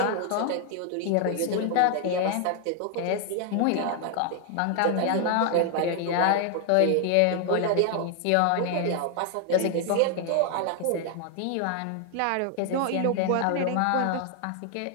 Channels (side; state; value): both; different; correlation 0.00